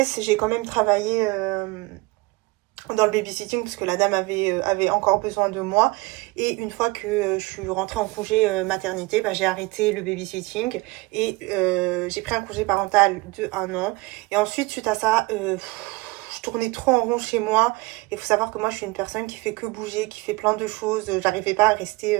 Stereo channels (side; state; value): left; quieter; 23.1 dB